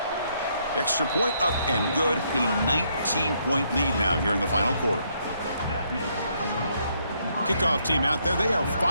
Extra point up and good. A 19-point lead now here in the final quarter. Kickoff team out there. They are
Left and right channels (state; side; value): inverted; both; correlation -0.73